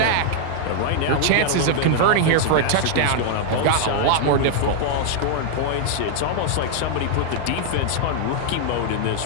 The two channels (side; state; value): both; different; correlation 0.00